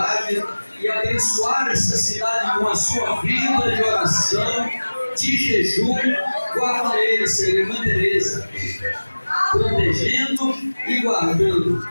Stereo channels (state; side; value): inverted; both; correlation -1.00